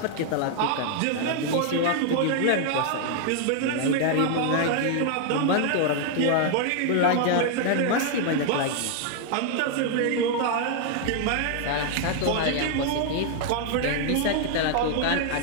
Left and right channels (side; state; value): both; different; correlation 0.00